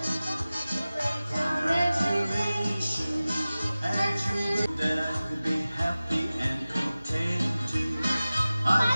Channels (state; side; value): inverted; both; correlation -0.97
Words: That I could be happy and content too. I